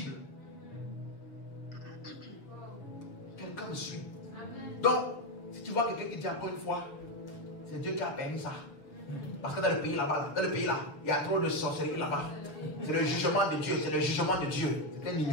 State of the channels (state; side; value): late; right; 6.9 ms